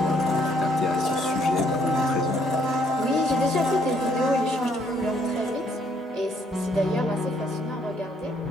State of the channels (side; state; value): both; normal; correlation 0.67